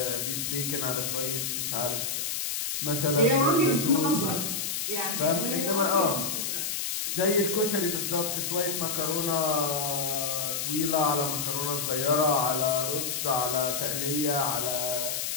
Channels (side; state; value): left; noise; hiss, 2 dB below the sound